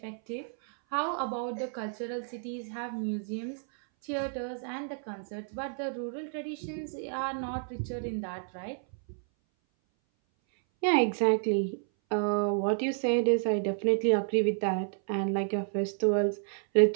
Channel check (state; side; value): silent; left; 57 dB below the other